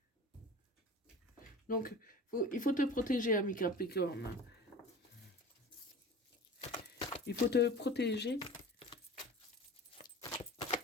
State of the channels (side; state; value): both; normal; correlation 0.37